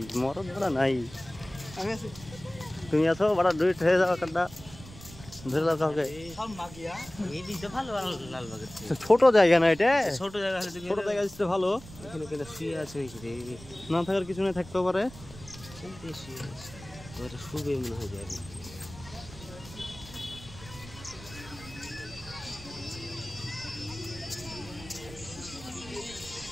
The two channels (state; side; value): noise; right; rumble, 17 dB below the sound